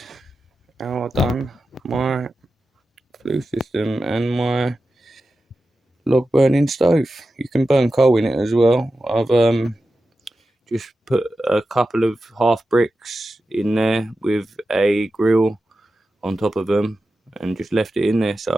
how I've done my flue system and my log burning stove. You can burn coal in it as well. I've just put a couple of half bricks in there with a grill on top of them and just left it in there so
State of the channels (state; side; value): normal; both; correlation 0.92